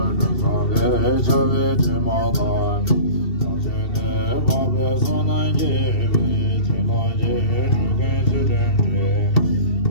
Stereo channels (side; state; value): right; late; 2.7 ms